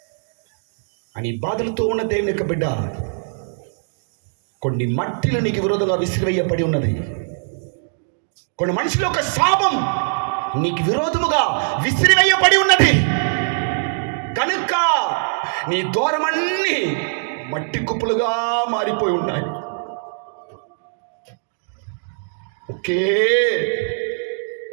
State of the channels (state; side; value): silent; left; digital silence